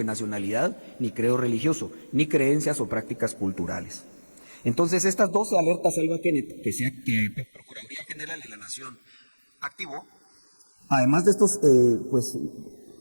nacionalidad, ni credo religioso, ni creencias o prácticas culturales. Entonces, estas 12 alertas Alba Kenneth que Procuraduría General de la Nación activó, además de estos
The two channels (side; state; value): both; inverted; correlation -1.00